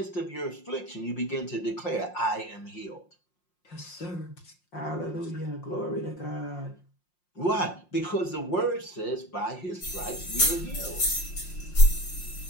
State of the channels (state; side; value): late; right; 5.6 ms